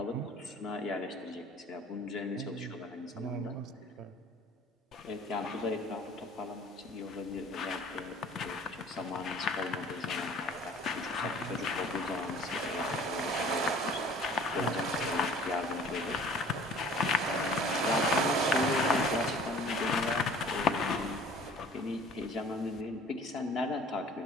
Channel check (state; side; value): normal; both; correlation 0.49